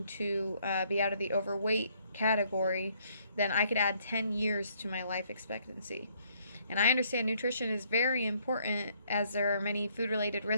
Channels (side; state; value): both; inverted; correlation -0.67